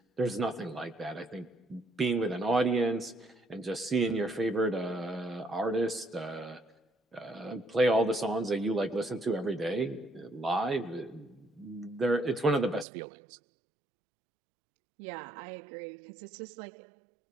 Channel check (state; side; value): drops out; left; at 12.9 s